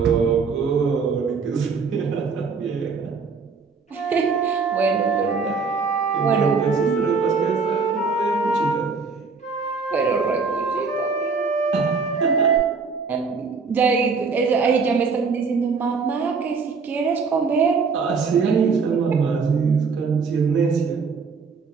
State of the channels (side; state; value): left; quieter; 5.0 dB